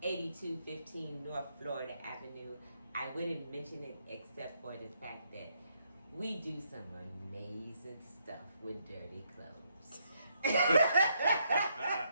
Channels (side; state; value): both; inverted; correlation -0.75